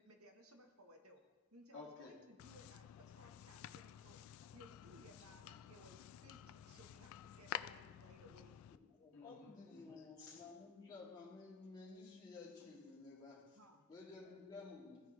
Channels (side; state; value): right; quieter; 6.5 dB